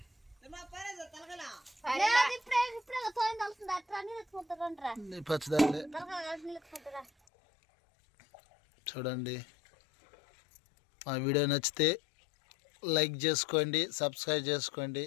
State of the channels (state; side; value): drops out; right; at 7.1 s